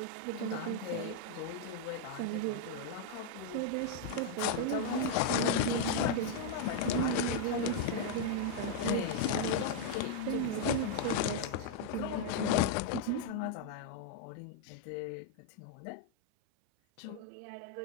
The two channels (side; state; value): both; different; correlation -0.01